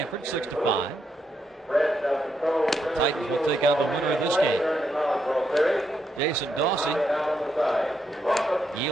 6-5. The Titans will take on the winner of this game. Jason Dawsey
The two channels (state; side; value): normal; both; correlation 0.80